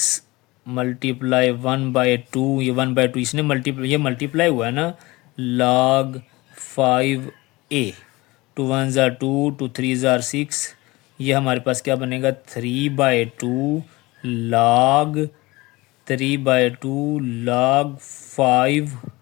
मल्टीप्लाई 1/2, ये 1/2 इसने मल्टीप्लाई, ये मल्टीप्लाई हुआ है ना log 5A। 2 1 ज़ा 2, 2 3 ज़ा 6, ये हमारे पास क्या बनेगा 3/2 log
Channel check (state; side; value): quieter; right; 21.8 dB